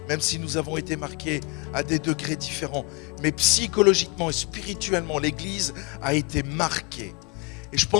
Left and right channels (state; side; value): quieter; right; 28.6 dB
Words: même si nous avons été marqués à des degrés différents. Mais psychologiquement et spirituellement, l'Église a été marquée. Et je